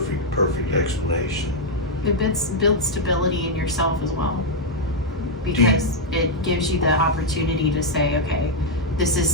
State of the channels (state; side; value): normal; both; correlation -0.02